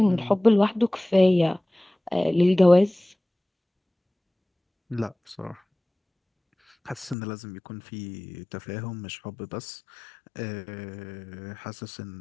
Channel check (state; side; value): drops out; right; at 7.2 s